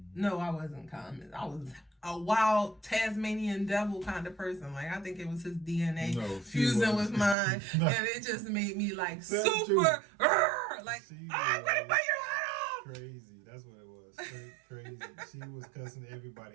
No, I wasn't calm. I was a wild Tasmanian devil kind of person. Like, I think it was his DNA fusing with mine. And it just made me like super, like, I'm gonna bite your head off. Crazy. That's what it was. Crazy. She was cussing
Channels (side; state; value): left; drops out; at 7.4 s